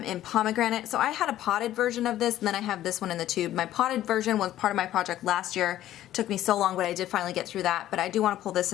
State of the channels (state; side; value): quieter; right; 13.2 dB